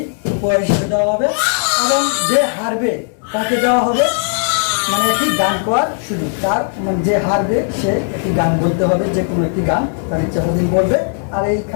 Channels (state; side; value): silent; right; 69 dB below the other